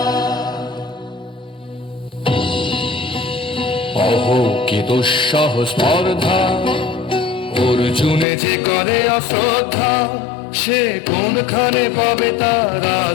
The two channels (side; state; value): right; drops out; at 8.2 s